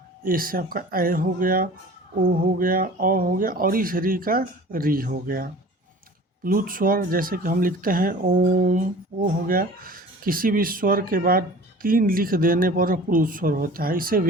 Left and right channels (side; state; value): both; normal; correlation 0.43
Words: ए से आपका ऐ हो गया, ओ हो गया, औ हो गया और इस री का री हो गया। प्लुत स्वर जैसे कि हम लिखते हैं ओम, ओ हो गया। किसी भी स्वर के बाद 3 लिख देने पर प्लुत स्वर होता है। इसे